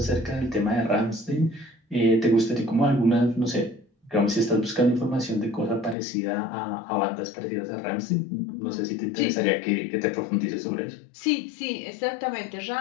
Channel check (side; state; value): right; drops out; at 6.0 s